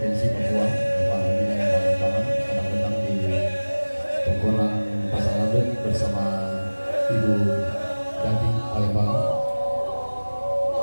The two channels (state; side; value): inverted; both; correlation -1.00